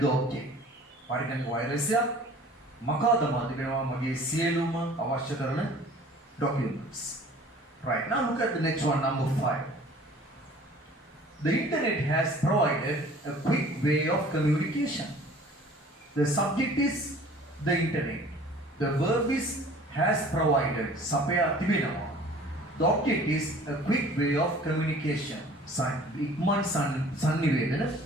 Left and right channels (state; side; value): normal; both; correlation 0.49